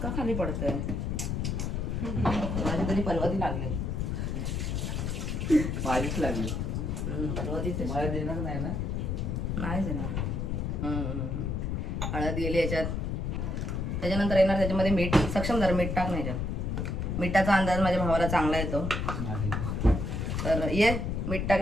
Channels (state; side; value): noise; left; rumble, 1 dB below the sound